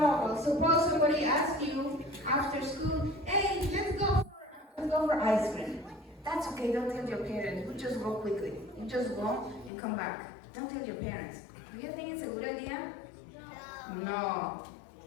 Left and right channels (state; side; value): drops out; right; at 9.7 s